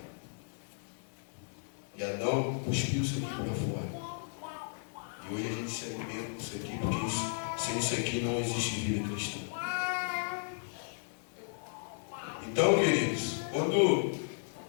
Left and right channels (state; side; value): silent; right; digital silence